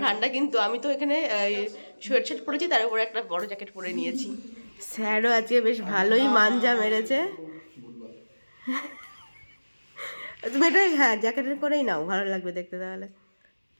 ঠান্ডা, কিন্তু আমি তো এখানে সোয়েট শার্ট পরেছি, তার উপরে একটা বড় জ্যাকেট পরে নিয়েছি। স্যারও আজকে বেশ ভালোই মাঞ্জা মেরেছে। তুমি এটা, হ্যাঁ, জ্যাকেটের পরেই নাও, ভালো লাগবে দেখতে। তাহলে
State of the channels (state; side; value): inverted; both; correlation -1.00